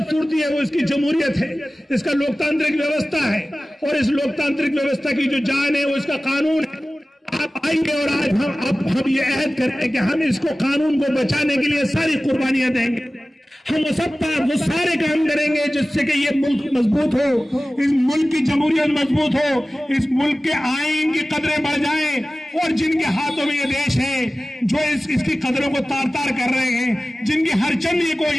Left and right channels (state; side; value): normal; both; correlation 0.97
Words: है वो इसकी जमहूरियत है, इसका लोकतांत्रिक व्यवस्था है और इस लोकतांत्रिक व्यवस्था की जो जान है वो इसका कानून है। आप आएंगे और आज हम ये अहद करें कि हम इसको कानून को बचाने के लिए सारी कुर्बानियां देंगे, हम वो सारे काम करेंगे जिससे कि ये मुल्क मजबूत हो, इस मुल्क की जमहूरियत मजबूत हो, इस मुल्क के आईन की कदरें बढ़ जाएं और जिनके हाथों में ये देश है जो इसकी कदरों को तार तार कर रहे हैं, जिनकी हर चंद ये